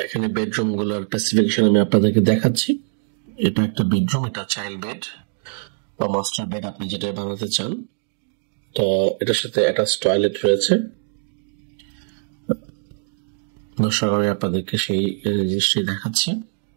এখানে বেডরুম গুলোর স্পেসিফিকেশন আমি আপনাদেরকে দেখাচ্ছি। এটা একটা বেডরুম, এটা চাইল্ড বেড বা মাস্টার বেড, আপনি যেটা বানাতে চান। তো এটার সাথে অ্যাটাচ টয়লেট রয়েছে। দর্শক, আমি আপনাদেরকে সেই জিনিসটি দেখাচ্ছি।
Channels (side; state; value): left; silent; digital silence